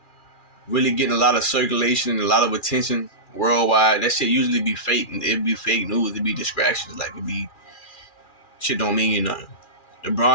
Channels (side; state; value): right; late; 2.4 ms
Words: really getting a lot of circulation and a lot of attention worldwide, that shit usually be fake. It'd be fake news. It'd be distractions. Like, it'd be shit don't mean nothing.